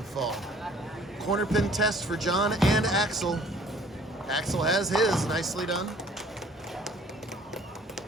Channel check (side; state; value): both; normal; correlation 0.55